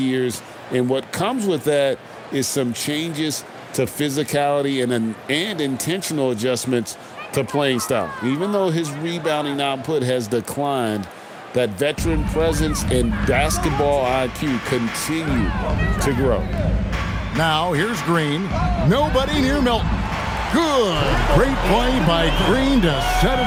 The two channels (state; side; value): identical; both; correlation 1.00